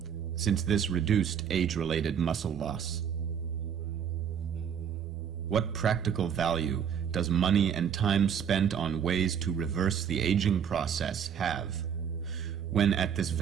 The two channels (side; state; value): left; quieter; 8.0 dB